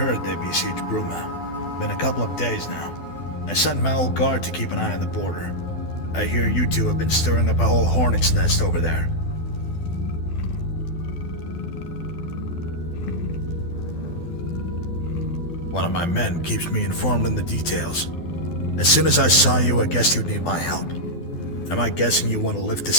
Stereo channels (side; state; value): right; late; 12 ms